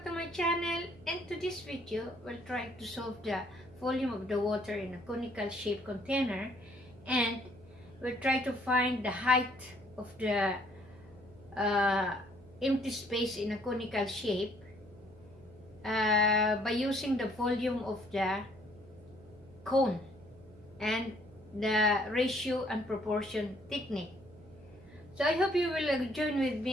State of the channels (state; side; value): noise; right; hum, 22 dB below the sound